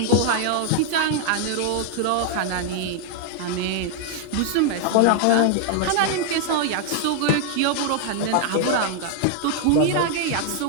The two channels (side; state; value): both; different; correlation 0.00